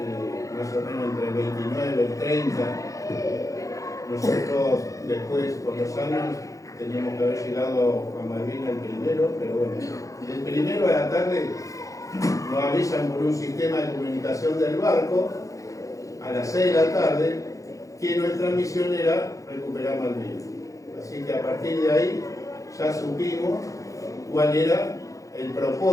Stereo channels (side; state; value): right; late; 0.16 ms